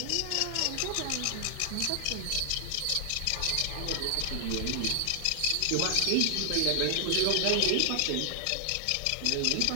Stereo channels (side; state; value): both; different; correlation 0.00